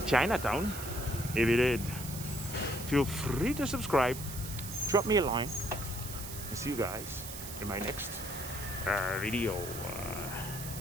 Chinatown. If you did, feel free to subscribe, drop me a line, and see you guys in my next video.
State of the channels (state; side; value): noise; right; hiss, 9 dB below the sound